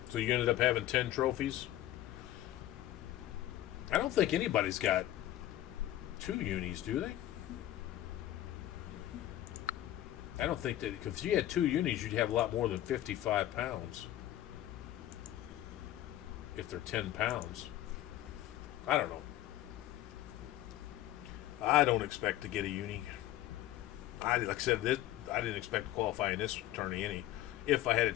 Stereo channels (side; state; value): right; quieter; 13.8 dB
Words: So you ended up having 10 trophies? I don't think anybody's got 2 unis, do they? I don't think that, because if you had 2 unis, you'd have a lot more than 55 pounds. If they're 10 pounds. I don't know. I don't expect to get a uni. Like I said, I didn't expect to qualify in this tourney any. If I had a